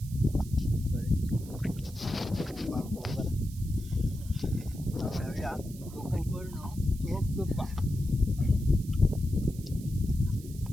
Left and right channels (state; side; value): noise; right; hiss, 19 dB below the sound